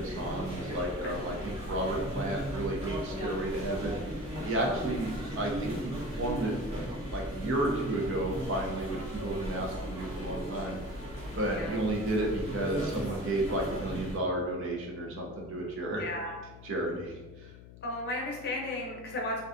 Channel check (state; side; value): noise; left; hum, 17 dB below the sound